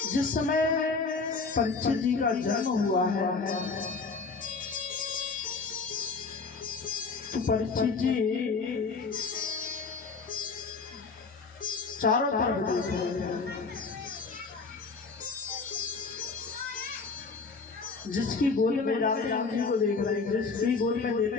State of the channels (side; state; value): right; quieter; 4.5 dB